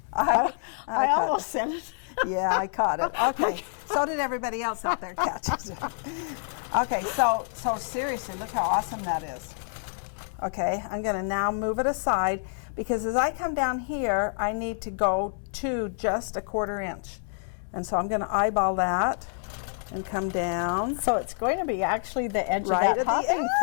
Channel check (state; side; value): silent; right; digital silence